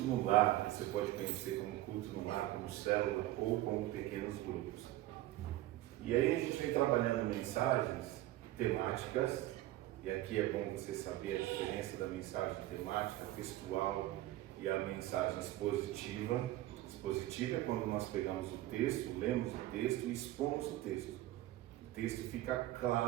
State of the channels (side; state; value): left; quieter; 15.6 dB